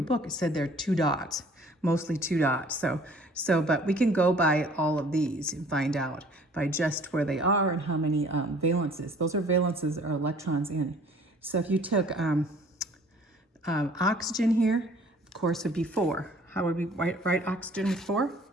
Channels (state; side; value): normal; both; correlation 0.53